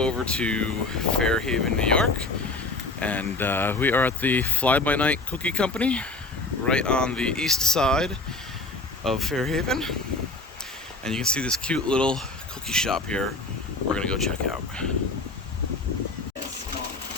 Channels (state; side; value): quieter; right; 3.4 dB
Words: to Fairhaven, New York. And we are at the Fly By Night Cookie Company, right on the east side of Fairhaven. And you can see this cute little cookie shop here we're gonna go check out.